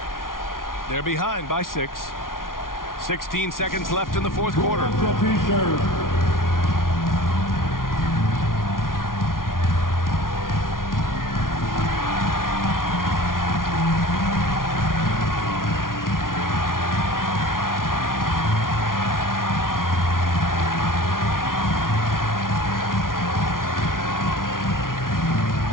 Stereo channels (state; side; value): late; right; 0.90 ms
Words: They're behind by 6. 16 seconds left in the fourth quarter.